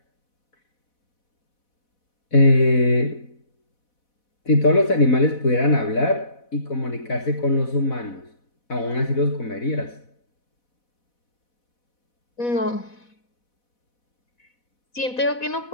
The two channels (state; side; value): late; right; 4.1 ms